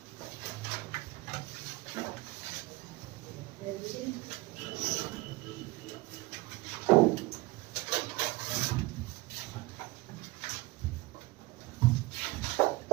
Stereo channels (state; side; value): quieter; left; 20.9 dB